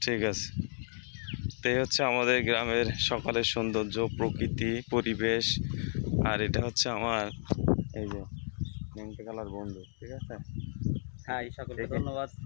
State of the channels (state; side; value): silent; right; 56 dB below the other